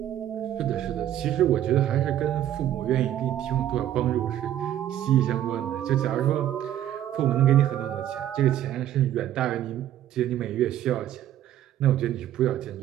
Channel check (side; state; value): left; quieter; 11.9 dB